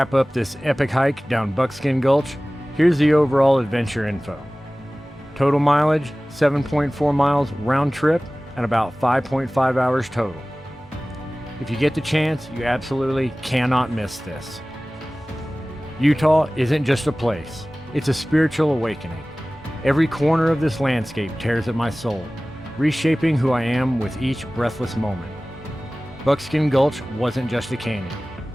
up this epic hike down Buckskin Gulch, here's the overall adventure info. Total mileage, 7.4 miles round trip and about 5.5 hours total. If you get the chance, you absolutely cannot miss this. Utah isn't just a place, it's a spiritual awakening. Every corner of this landscape tears at my soul, reshaping who I am with each breathless moment. Buckskin Gulch wasn't just a canyon.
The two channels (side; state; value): both; normal; correlation 0.98